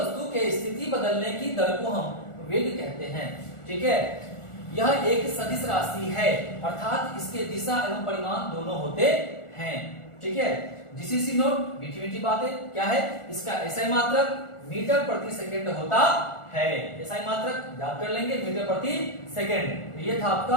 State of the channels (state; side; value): late; right; 1.4 ms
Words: के स्थिति बदलने की दर को हम वेग कहते हैं। ठीक है। यह एक सदिश राशि है, अर्थात इसके दिशा एवं परिमाण दोनों होते हैं। ठीक है। जीसीसी नोट, मीठी मीठी बातें। क्या है इसका एसआई मात्रक? मीटर प्रति सेकंड होता है। एसआई मात्रक याद कर लेंगे, मीटर प्रति सेकंड। ये था